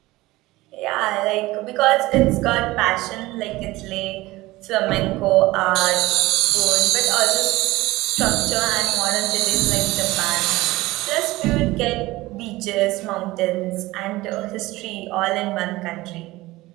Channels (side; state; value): left; quieter; 19.1 dB